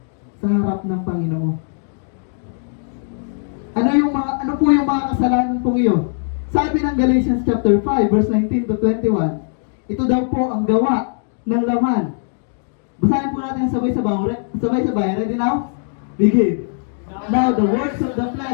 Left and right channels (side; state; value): right; silent; 66 dB below the other